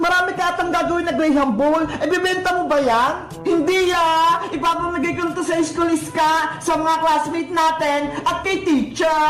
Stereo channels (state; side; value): identical; both; correlation 1.00